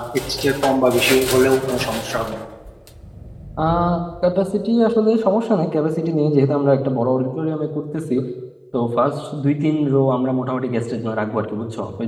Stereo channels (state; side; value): identical; both; correlation 1.00